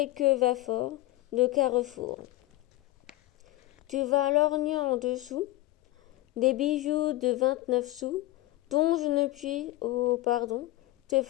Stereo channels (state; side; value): quieter; right; 17.3 dB